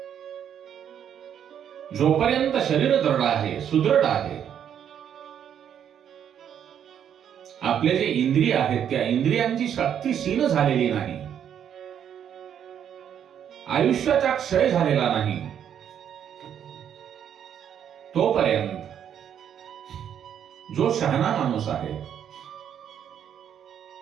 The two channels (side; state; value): left; quieter; 9.1 dB